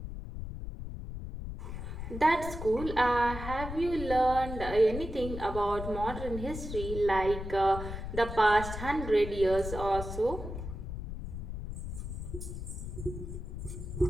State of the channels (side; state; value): left; noise; rumble, 7 dB below the sound